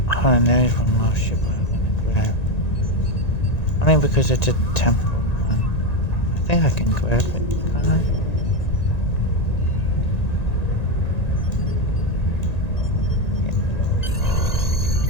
Oh, and there is one more ship I'm gonna grab. Only because it's a temporal one. I think I can grab it, can't I?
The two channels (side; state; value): right; late; 1.9 ms